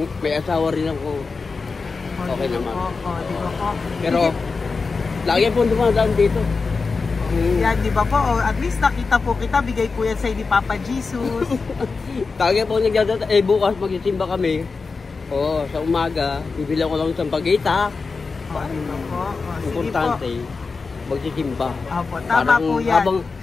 may asawa rin ako. Okay naman. Di ba po? Pero, lagi po dumadaan dito. Yan, di ba po? Oh, at least nakita po kita, bigay po yan sa'yo ni Papa Jesus. Lagi po nagdadaan. Bukas magsisimba kami. Oo, sa umaga, bibili ko lang ng pagita. Di ba po? Oh, sige po. Importante. magsisimba. Opo, tama Parang po yan. habang-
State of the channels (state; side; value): quieter; right; 4.4 dB